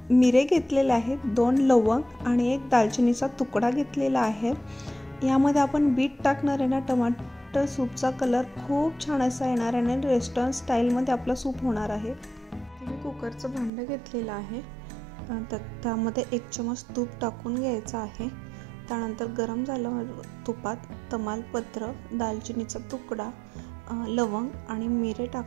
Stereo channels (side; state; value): left; drops out; at 13.7 s